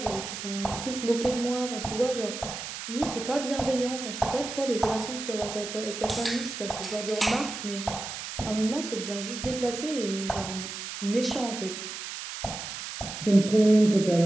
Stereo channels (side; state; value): right; noise; hiss, 8 dB below the sound